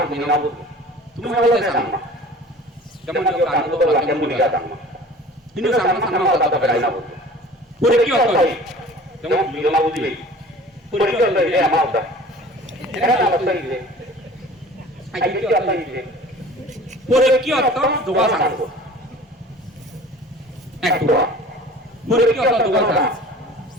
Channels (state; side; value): normal; both; correlation 0.44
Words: না বলবো তুমি বলতে চাও না যেমন যে কাজ তো বলা কেমন বলি দাও না কিন্তু সামনে সামনে কথা বলাই না বলবো পরীক্ষা হবে যেমন বিনা বুঝি পরীক্ষা হলে এ আমার দাও এটা অবস্থা কি আগে কি অবস্থা কি পরীক্ষা অর্থ দোয়া সাংব এক দোয়া পরীক্ষা অর্থ দোয়া সাংব